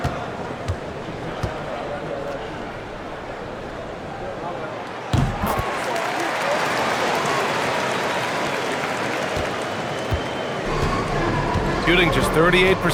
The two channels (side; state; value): both; identical; correlation 1.00